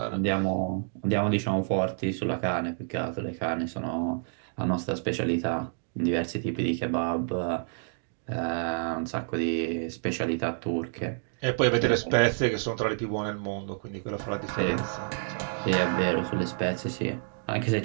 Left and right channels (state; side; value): silent; left; digital silence